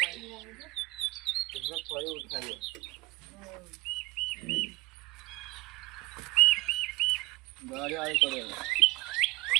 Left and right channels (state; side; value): quieter; left; 21.6 dB